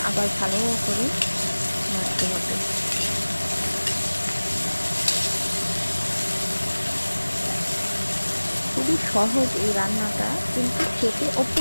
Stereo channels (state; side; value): inverted; both; correlation -1.00